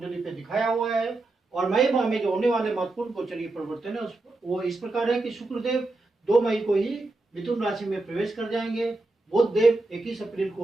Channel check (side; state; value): left; quieter; 3.1 dB